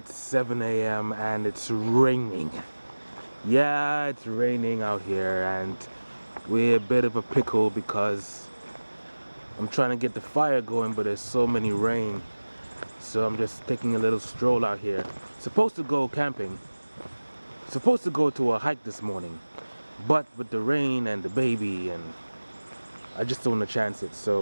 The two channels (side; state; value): both; inverted; correlation -1.00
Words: 7 a.m. and it's raining. Yeah, it's raining out here and we're a bit of a pickle because I'm trying to get the fire going, but there's so many rain. So I'm just taking a little stroll out here. Supposed to go camping. Supposed to go to a hike this morning. But with the rain and the baby, and I just don't want to chance it.